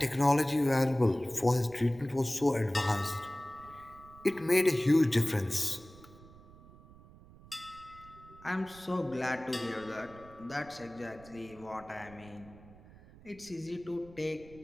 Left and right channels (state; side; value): noise; right; rumble, 21 dB below the sound